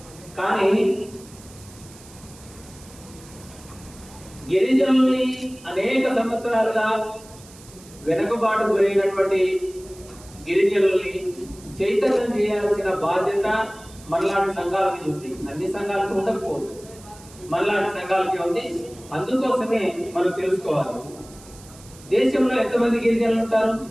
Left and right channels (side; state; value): right; noise; hiss, 21 dB below the sound